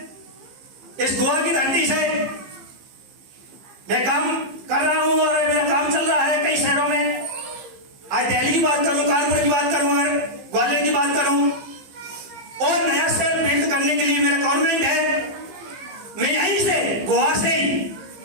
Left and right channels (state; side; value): late; left; 15 ms